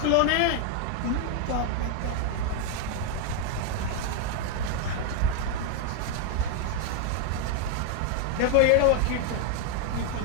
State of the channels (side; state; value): both; different; correlation 0.00